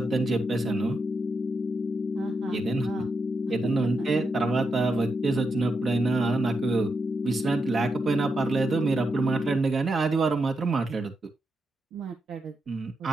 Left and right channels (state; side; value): normal; both; correlation 0.85